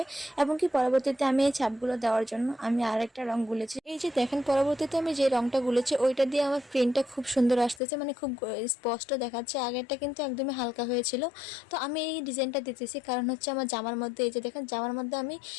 এবং কি পরবর্তীতে আমি এই ছাপগুলো দেওয়ার জন্য আমি আরেকটা রং গুলেছি। এই যে দেখেন, পরবর্তীতে আমি যে রংটা গুলেছি ওইটা দিয়ে আমার প্রিন্টটা খুব সুন্দর আসতেছে, মানে খুব স্পষ্ট দেখাচ্ছে। আগেরটা কিন্তু একদমই হালকা হয়েছিল। তো আমি এই ডিজাইনটা দিতেছি কারণ হচ্ছে আমার জামার মধ্যে, এই যে দেখেন জামার মধ্যে আমি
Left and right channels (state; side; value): drops out; right; at 7.8 s